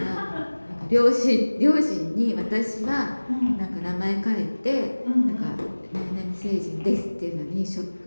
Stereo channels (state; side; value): inverted; both; correlation -1.00